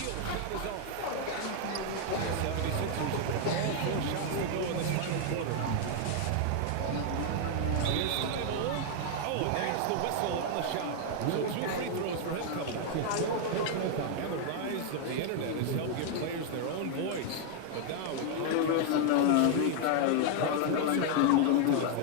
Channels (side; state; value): both; different; correlation 0.00